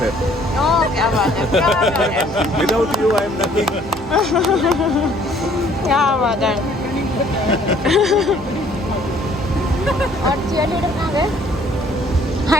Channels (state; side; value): normal; both; correlation 0.59